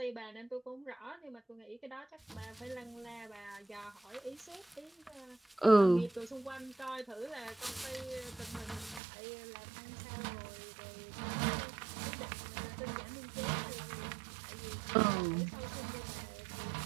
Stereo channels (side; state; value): left; drops out; at 9.0 s